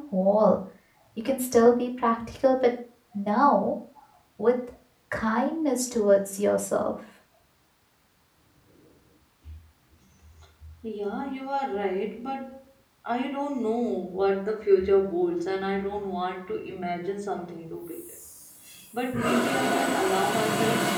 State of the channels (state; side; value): identical; both; correlation 1.00